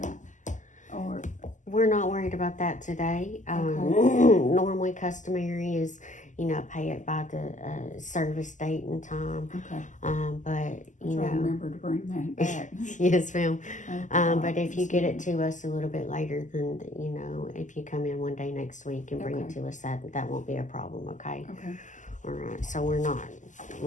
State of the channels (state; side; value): late; right; 0.36 ms